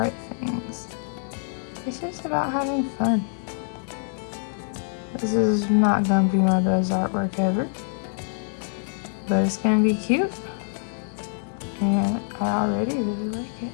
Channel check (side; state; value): right; silent; 56 dB below the other